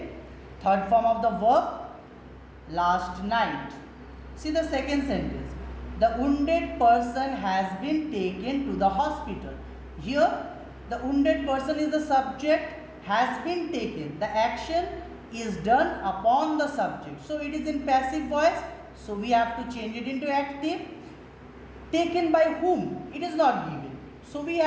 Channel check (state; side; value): identical; both; correlation 1.00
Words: third form of the verb, last night. See the second sentence, the wounded person has been taken to the hospital. Here the wounded person is the subject, has been taken, the action is done upon the subject, so it is in passive voice, so we have to change it into active. Taken by whom? It is not given, so we